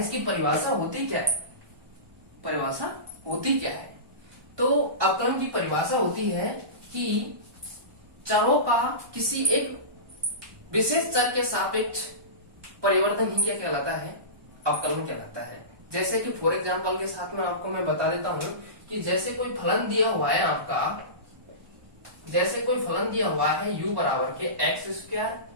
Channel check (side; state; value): left; late; 1.2 ms